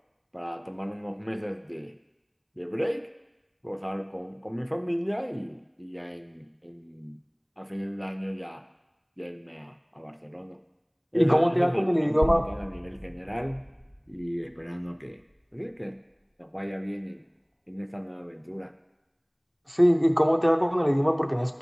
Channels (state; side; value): identical; both; correlation 1.00